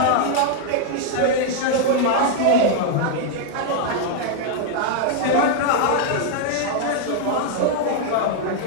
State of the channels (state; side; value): different; both; correlation 0.00